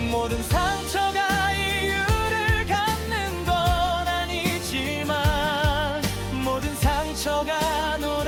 모든 상처가 이유를 갖는 건 아니지만, 모든 상처가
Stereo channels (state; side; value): identical; both; correlation 1.00